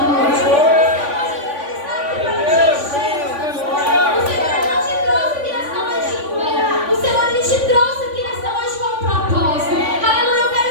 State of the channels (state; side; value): late; left; 3.5 ms